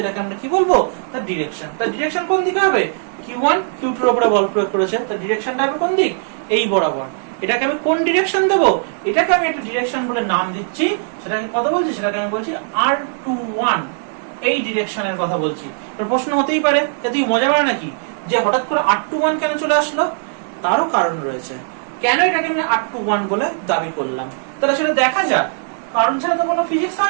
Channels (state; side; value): silent; left; digital silence